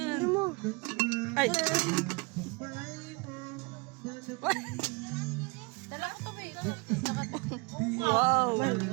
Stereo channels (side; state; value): left; quieter; 28.6 dB